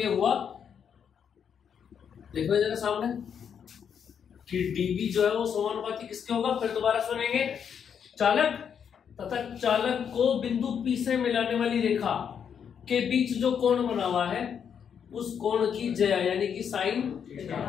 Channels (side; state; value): right; quieter; 7.7 dB